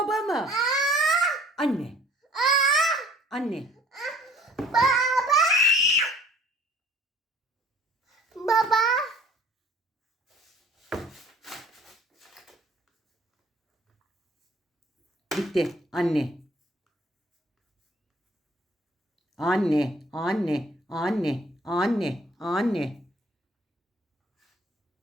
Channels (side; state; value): both; normal; correlation 0.54